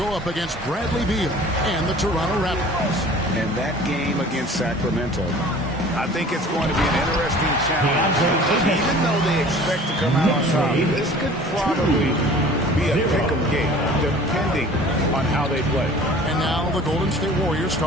up against Bradley Beal and the Toronto Raptors. And that game against Sacramento, I think it's going to be an interesting challenge. Even though they expect to come out on top, this could probably be a pick-em game, depending on how they play. And now the Golden State Warriors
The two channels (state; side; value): normal; both; correlation 0.46